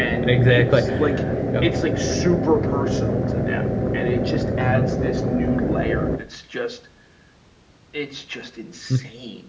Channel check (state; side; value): identical; both; correlation 1.00